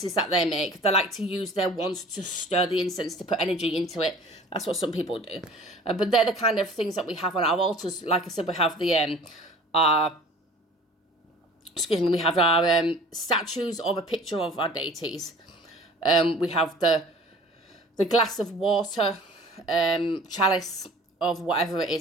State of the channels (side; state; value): both; normal; correlation 0.46